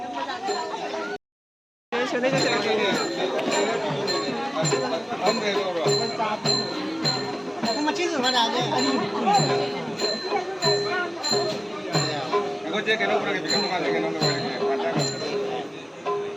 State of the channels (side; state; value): both; identical; correlation 1.00